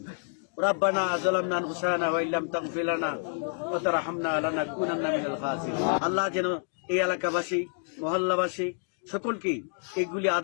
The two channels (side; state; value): right; silent; digital silence